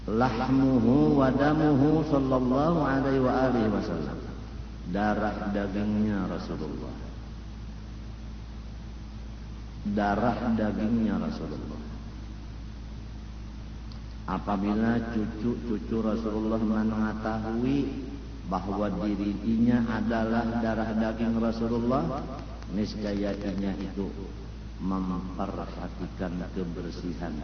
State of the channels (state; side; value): identical; both; correlation 1.00